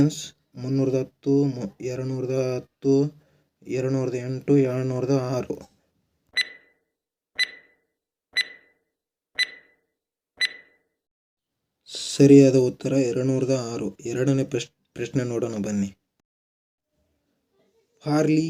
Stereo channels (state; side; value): identical; both; correlation 1.00